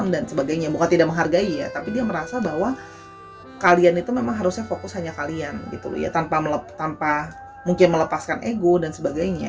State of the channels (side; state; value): both; identical; correlation 1.00